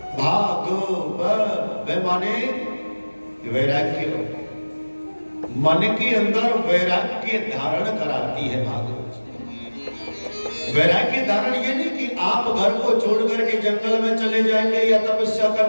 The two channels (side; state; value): both; inverted; correlation -1.00